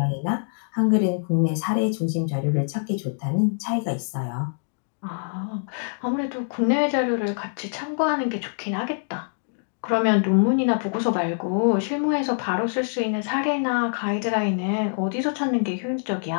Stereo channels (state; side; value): silent; right; digital silence